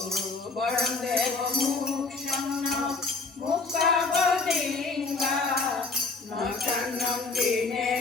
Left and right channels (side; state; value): right; quieter; 4.0 dB